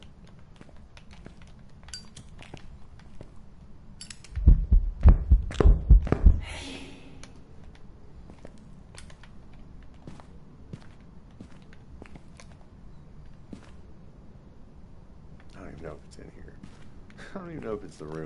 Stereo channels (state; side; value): identical; both; correlation 1.00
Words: I don't even know if it's in here. I don't even know if it's the